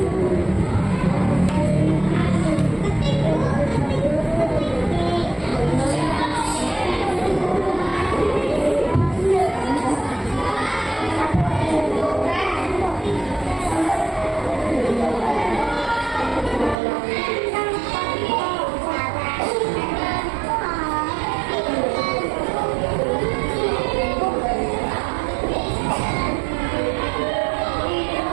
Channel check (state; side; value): drops out; left; at 16.8 s